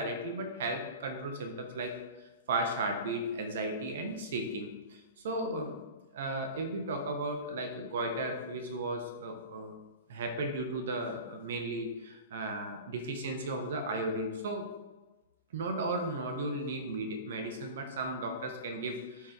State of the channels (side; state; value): both; inverted; correlation -0.34